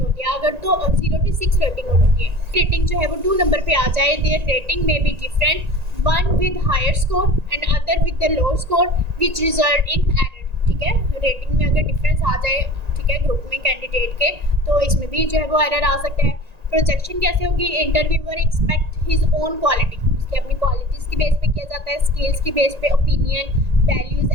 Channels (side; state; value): left; late; 1.9 ms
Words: होती है, अगर तो 0 to 6 रेटिंग होती है। रेटिंग जो है वो 2 नंबर पे आ जाए, देयर रेटिंग में be different, one with higher score and other with the low score which result in error, ठीक है, रेटिंग में अगर डिफरेंस आ जाए, ठीक है, ग्रुप में कैंडिडेट के, तो इसमें भी जो है वो एरर आ सकता है। प्रोजेक्शन कैसे होगी, interviewer expect his own quality, उसकी अपनी क्वालिटीज़ की बेस पे किया जाता है, स्किल्स की बेस पे, opinion, values